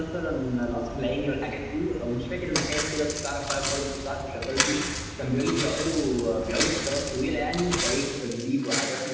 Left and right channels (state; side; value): identical; both; correlation 1.00